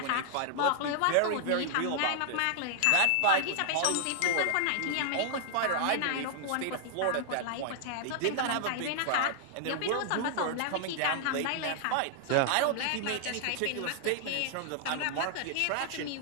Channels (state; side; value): different; both; correlation -0.01